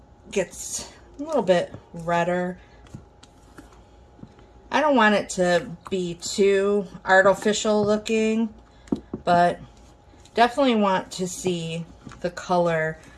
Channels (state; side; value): identical; both; correlation 1.00